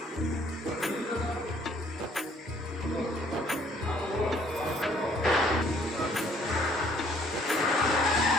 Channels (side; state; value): both; normal; correlation 0.61